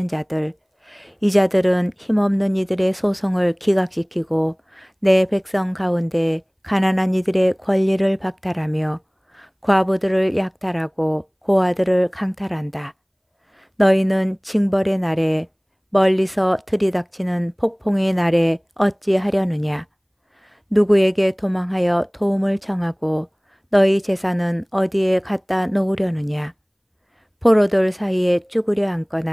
자들. 이 자들은 힘없는 이들의 소송을 기각시키고 내 백성 가운데 가난한 이들의 권리를 박탈하며 과부들을 약탈하고 고아들을 강탈한다. 너희는 징벌의 날에 멀리서 들이닥치는 폭풍의 날에 어찌하려느냐. 누구에게 도망하여 도움을 청하고 너희 재산은 어디에 갖다 놓으려느냐? 포로들 사이에 쭈그려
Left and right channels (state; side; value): identical; both; correlation 1.00